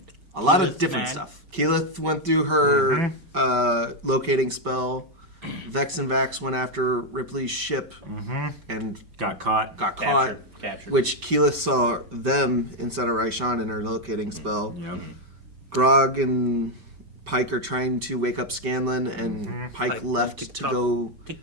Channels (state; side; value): late; left; 5.2 ms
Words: A lot of different stuff. Keyleth went through her locating spell. Vex and Vax went after Ripley's ship and Got caught. Captured. which Keyleth saw them instead of Raishan in her locating spell. Yep. Grog and Pike are trying to wake up Scanlan, and Pike left to go To